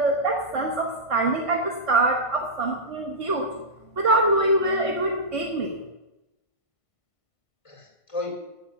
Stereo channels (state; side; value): late; right; 1.5 ms